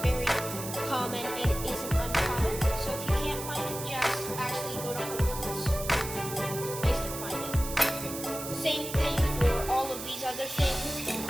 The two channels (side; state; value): right; noise; hiss, 8 dB below the sound